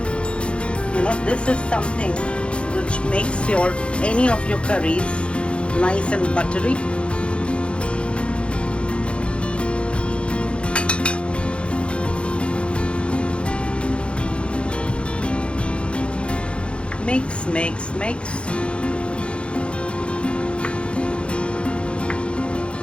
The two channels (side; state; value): right; late; 0.058 ms